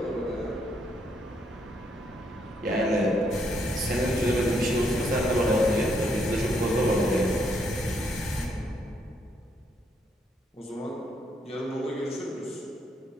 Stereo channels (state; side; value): normal; both; correlation 0.73